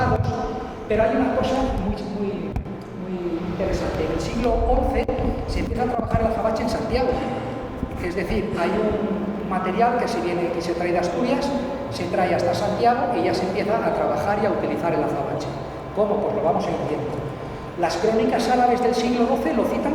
pero hay una cosa muy interesante. En el siglo XI se empieza a trabajar el azabache en Santiago, es decir, hay un material que se trae de Asturias, se trae hasta Santiago y ya se empieza a trabajar y a utilizar el azabache. ¿Cómo? Pues lo vamos a ir viendo. Las crónicas árabes del siglo XII lo citan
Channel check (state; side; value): identical; both; correlation 1.00